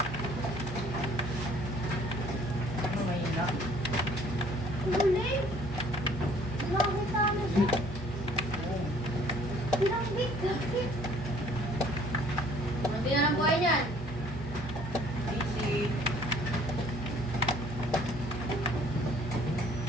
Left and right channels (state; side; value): normal; both; correlation 0.58